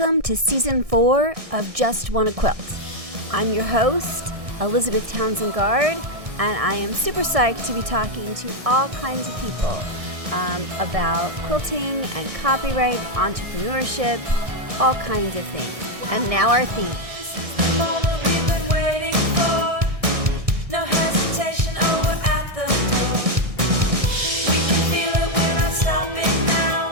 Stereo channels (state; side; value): late; left; 1.6 ms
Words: to Season 4 of Just Wanna Quilt. I'm your host, Elizabeth Townsend Guard, and I am super psyched to be talking to all kinds of people about quilting and copyright, entrepreneurship, all kinds of things. And now our theme. This is the moment we've been waiting for. No hesitation, over at the door. We can feel it, we're not stopping now.